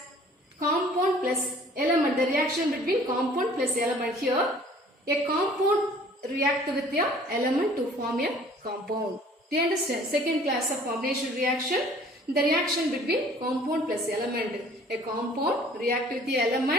compound plus element, the reaction between compound plus element. Here, a compound react with the element to form a compound. Do you understand? Second class of combination reaction, the reaction between compound plus element. A compound react with the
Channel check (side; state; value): both; normal; correlation 0.53